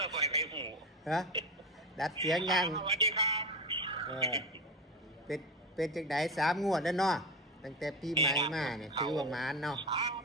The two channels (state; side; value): normal; both; correlation 0.21